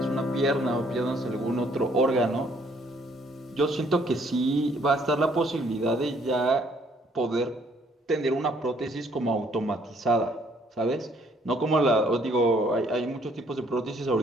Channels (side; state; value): both; normal; correlation 0.64